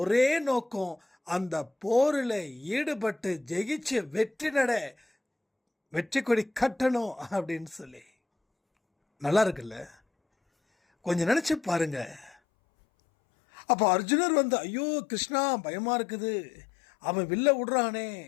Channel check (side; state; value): right; drops out; at 12.4 s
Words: ஒரே நோக்கம் அந்த போரில் ஈடுபட்டு ஜெயிச்சு வெற்றி கொடி கட்டணும் அப்படின்னு சொல்லி. நல்லா இருக்குல்ல? கொஞ்சம் நினைச்சு பாருங்க. அப்போ அர்ஜுனர் ஐயோ கிருஷ்ணா பயமா இருக்குது, அவன் வில்ல விடுறானே,